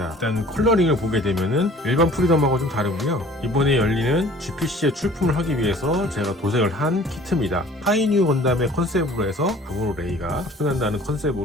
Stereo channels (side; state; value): both; normal; correlation 0.51